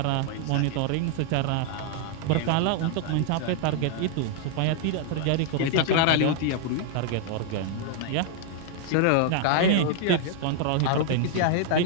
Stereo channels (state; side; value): different; both; correlation 0.00